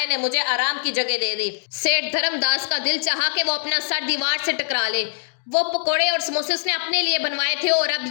ने मुझे आराम की जगह दे दी। सेठ धर्मदास का दिल चाहा कि वो अपना सर दीवार से टकरा ले। वो पकोड़े और समोसे उसने अपने लिए बनवाए थे और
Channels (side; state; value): right; silent; digital silence